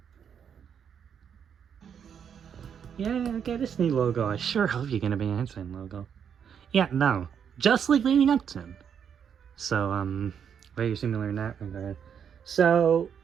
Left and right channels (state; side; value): quieter; left; 7.9 dB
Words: Yeah, okay, Disney logo. I sure hope you're gonna be an Einstein logo. Yeah, no. Just like leading up to him. So, very similar in that regard. So,